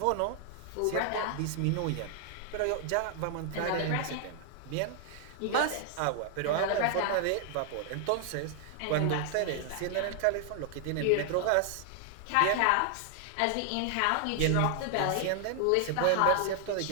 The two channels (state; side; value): different; both; correlation 0.00